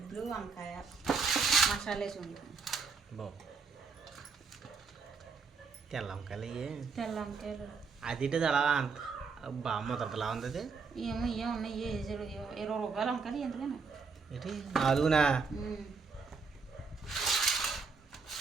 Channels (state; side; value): quieter; left; 5.0 dB